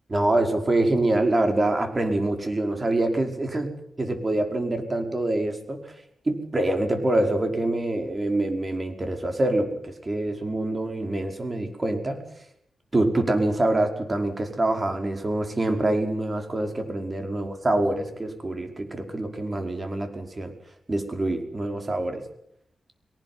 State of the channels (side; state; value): both; normal; correlation 0.93